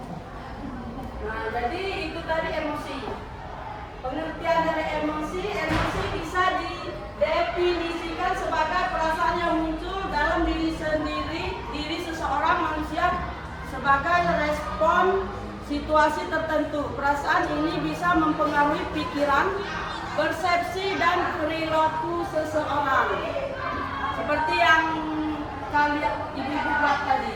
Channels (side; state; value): both; identical; correlation 1.00